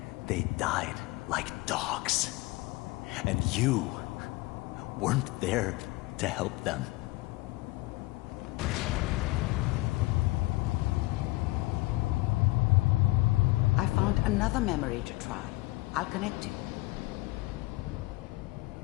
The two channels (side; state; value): right; quieter; 21.0 dB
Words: they died like dogs. And you weren't there to help them. I found another memory to try. I'll connect you.